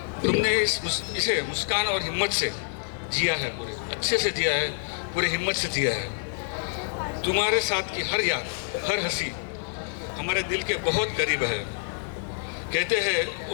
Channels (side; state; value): right; silent; digital silence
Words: तुमने इसे मुस्कान और हिम्मत से जिया है, पूरे अच्छे से जिया है, पूरे हिम्मत से जिया है। तुम्हारे साथ की हर याद, हर हंसी हमारे दिल के बहुत करीब है। कहते हैं